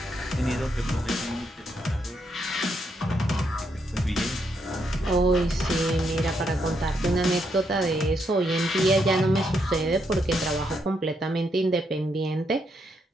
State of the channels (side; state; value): both; normal; correlation 0.78